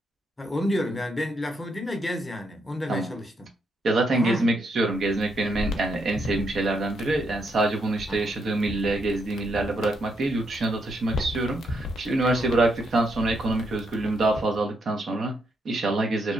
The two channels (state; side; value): normal; both; correlation 0.78